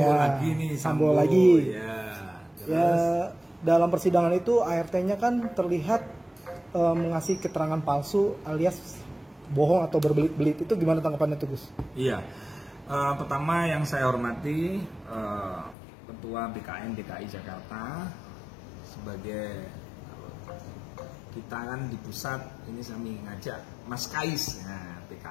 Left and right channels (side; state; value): right; drops out; at 15.8 s